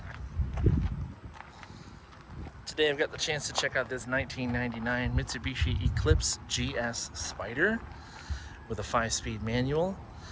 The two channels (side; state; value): both; identical; correlation 1.00